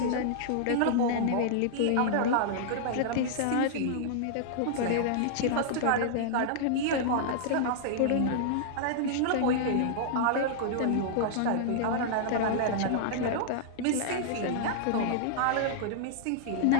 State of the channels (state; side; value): different; both; correlation -0.01